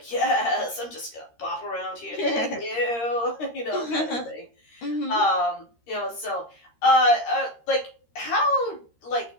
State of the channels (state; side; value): late; right; 13 ms